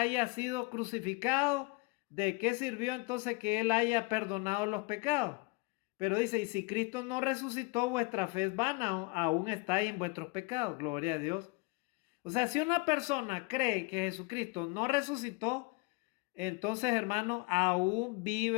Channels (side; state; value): right; quieter; 26.9 dB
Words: sido crucificado. ¿De qué sirvió entonces que Él haya perdonado los pecados? Pero dice, y si Cristo no resucitó, vuestra fe es vana, aún estáis en vuestros pecados. Gloria a Dios. O sea, si una persona cree que Jesucristo no resucitó, entonces, hermano, aún